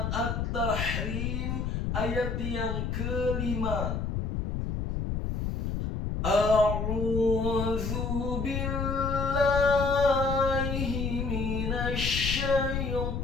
At-Tahrim ayat yang kelima. A'udzu billahi minasy syaithanir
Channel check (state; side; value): noise; left; rumble, 1 dB below the sound